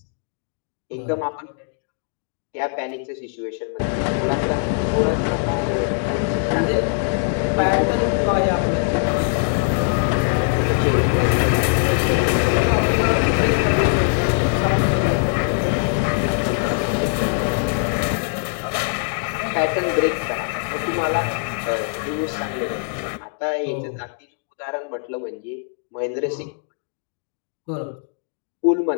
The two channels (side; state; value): right; silent; 62 dB below the other